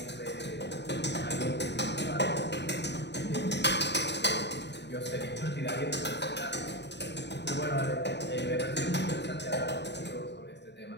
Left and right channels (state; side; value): late; right; 0.50 ms